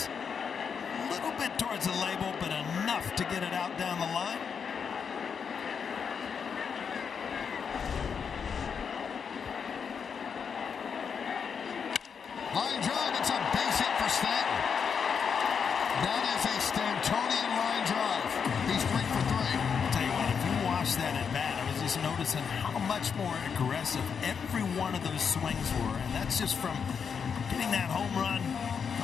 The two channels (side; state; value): right; quieter; 6.6 dB